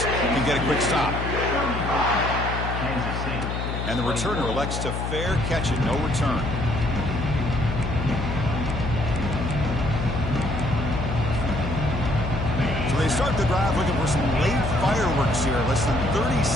can get a quick stop. And the returner elects to fair catch it, no return. So they start the drive looking for some late fireworks here, less than 30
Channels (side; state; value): left; noise; hum, 3 dB below the sound